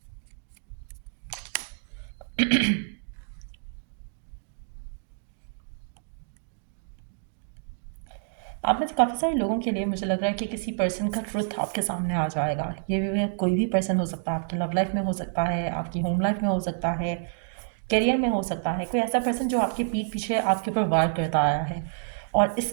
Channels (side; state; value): left; silent; digital silence